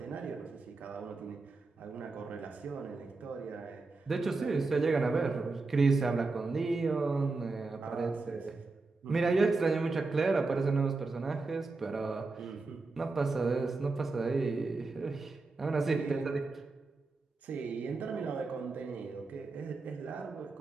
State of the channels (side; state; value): left; quieter; 3.7 dB